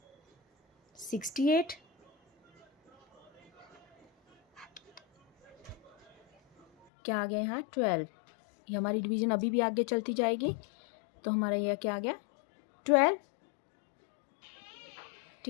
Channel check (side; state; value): right; drops out; at 6.9 s